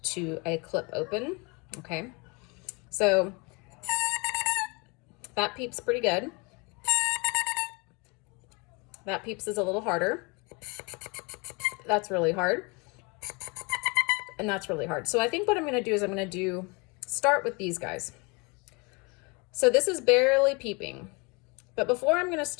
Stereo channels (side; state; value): right; quieter; 29.6 dB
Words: to a clip open. Okay, so that peeps pretty good. That peeps is a little harder. That's really hard. And that's really hard. So I think what I'm going to do is start with these guys. So this is barely peeping. But before I'm going to